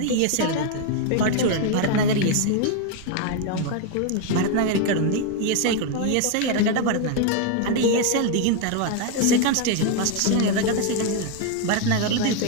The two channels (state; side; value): different; both; correlation 0.01